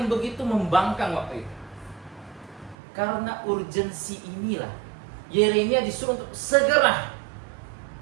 begitu membangkang waktu itu. Karena urgensi inilah Yeremia disuruh untuk segera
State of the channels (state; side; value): drops out; left; at 2.8 s